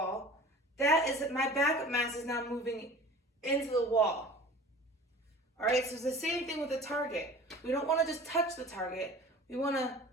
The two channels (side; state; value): both; normal; correlation 0.42